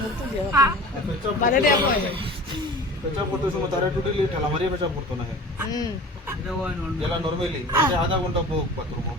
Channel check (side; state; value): both; normal; correlation 0.39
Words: পেশা করতে সময় তারা টোটালি ঠেলা মারিয়ে পেশা করতো না যেটা নর্মালি আধা ঘন্টা হোক বাথরুম